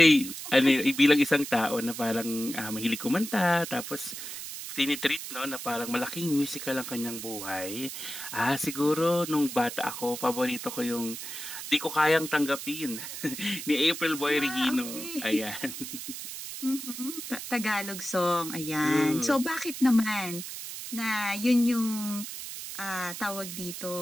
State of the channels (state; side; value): noise; right; hiss, 8 dB below the sound